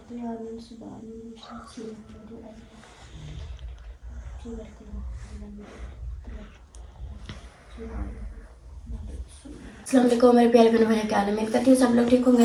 दे। आमीन सुम्मा आमीन। अस्सलाम वालेकुम मेरे प्यारे बहन भाई, क्या हाल है? उम्मीद करती हूँ सब लोग ठीक होंगे।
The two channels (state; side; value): identical; both; correlation 1.00